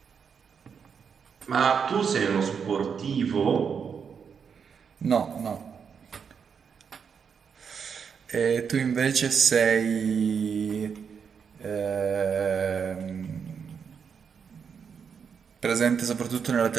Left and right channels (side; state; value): left; quieter; 6.6 dB